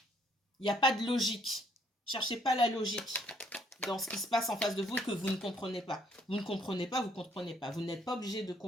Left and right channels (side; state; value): both; normal; correlation 0.67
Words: Il n'y a pas de logique. Cherchez pas la logique. dans ce qui se passe en face de vous et que vous ne comprenez pas. Vous ne comprenez pas, vous ne comprenez pas. Vous n'êtes pas obligé de